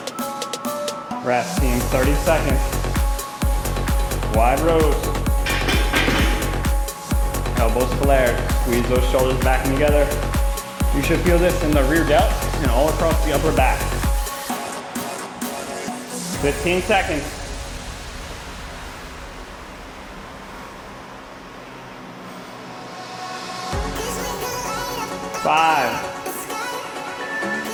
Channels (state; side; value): identical; both; correlation 1.00